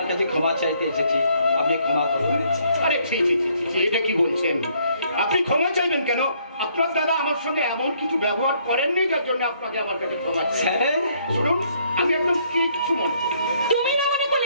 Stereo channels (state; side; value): inverted; both; correlation -0.67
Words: কাছে ক্ষমা চাইতে এসেছি, আপনি ক্ষমা করুন। আরে ঠিক, এটা কি বলছেন? আপনি ক্ষমা চাইবেন কেন? আপনার দাদা আমার সঙ্গে এমন কিছু ব্যবহার করেননি যার জন্য আপনাকে আমার কাছে ক্ষমা চাই। স্যার শুনুন, আমি একদম কিচ্ছু মনে করি। তুমি না মনে